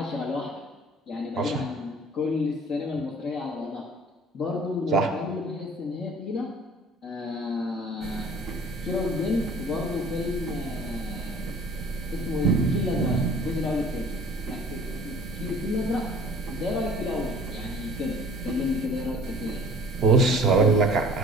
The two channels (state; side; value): normal; both; correlation 0.49